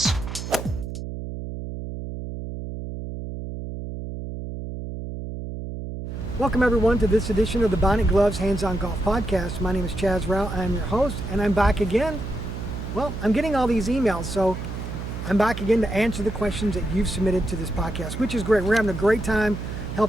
Welcome everyone to this edition of the Bionic Gloves Hands-On Golf Podcast. My name is Chaz Rao. I'm your host, and I'm back again. Well, I'm getting all these emails, so I'm back again to answer the questions that you've submitted to this podcast, which is great. We're having a great time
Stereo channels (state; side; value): noise; right; hum, 7 dB below the sound